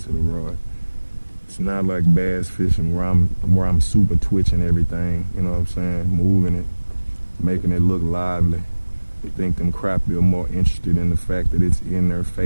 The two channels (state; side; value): inverted; both; correlation -1.00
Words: the rod. It's not like bass fishing where I'm super twitching everything, you know what I'm saying? Moving it, making it look lively. I think them crappie are more interested in the fact that it's in their